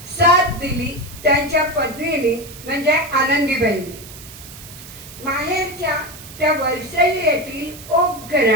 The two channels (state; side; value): noise; right; hiss, 16 dB below the sound